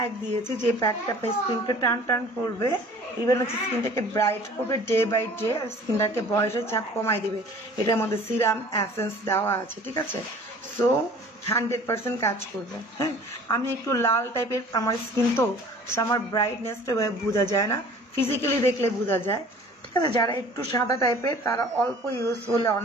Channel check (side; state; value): both; normal; correlation 0.48